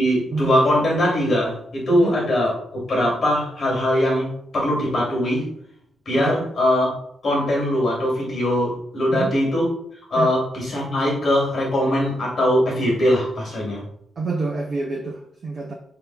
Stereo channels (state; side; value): normal; both; correlation 0.81